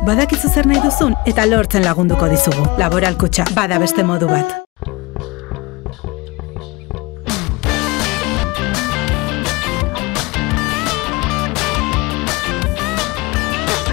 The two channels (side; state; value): right; quieter; 24.1 dB